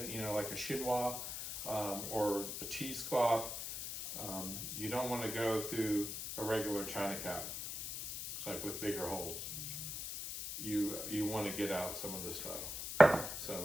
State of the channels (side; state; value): left; noise; hiss, 5 dB below the sound